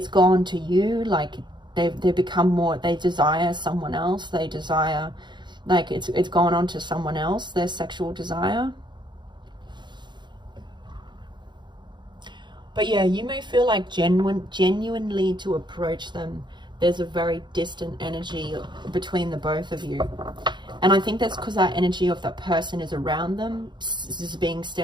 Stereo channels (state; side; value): late; left; 0.22 ms